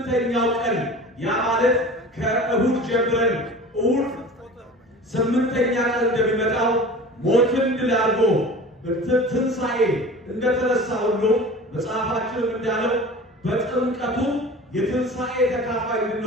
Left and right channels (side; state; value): both; normal; correlation 0.38